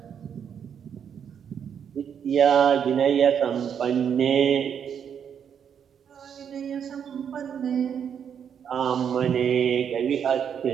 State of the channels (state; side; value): quieter; left; 8.0 dB